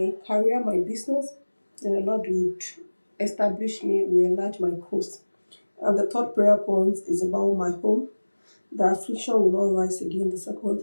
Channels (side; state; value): both; inverted; correlation -1.00